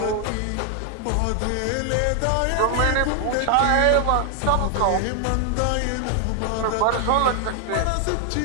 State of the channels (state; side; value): different; both; correlation 0.00